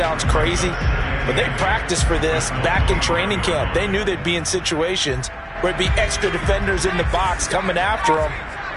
crazy, but they practiced for this back in training camp. They knew they'd be in situations where it'd be extra defenders in the box coming after them,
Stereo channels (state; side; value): identical; both; correlation 1.00